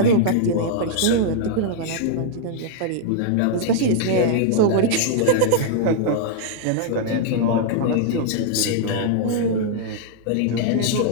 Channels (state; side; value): different; both; correlation -0.01